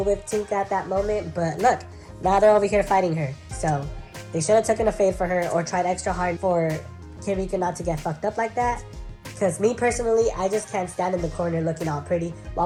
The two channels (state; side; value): identical; both; correlation 1.00